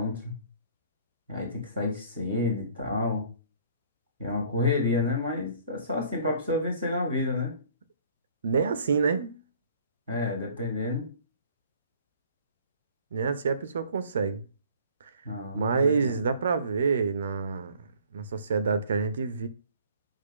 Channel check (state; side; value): inverted; both; correlation -0.55